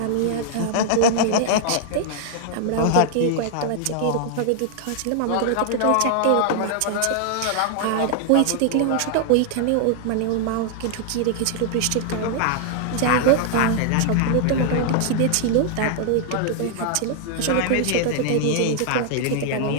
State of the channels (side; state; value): both; different; correlation -0.01